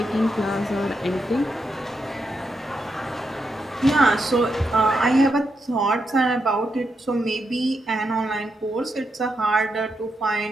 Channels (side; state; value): both; normal; correlation 0.83